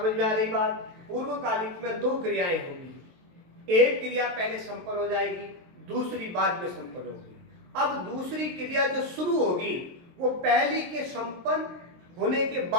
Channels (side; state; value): left; late; 23 ms